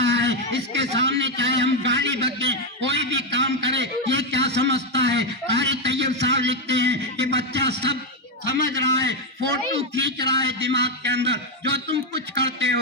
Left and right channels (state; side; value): normal; both; correlation 0.05